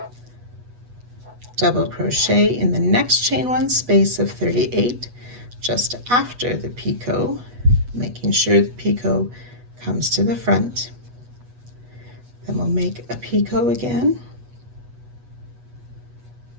double crochet in the next chain 1 space of 38 just after the picot, making sure the picot comes to the front. Then we'll make a picot again,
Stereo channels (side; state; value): left; late; 8.2 ms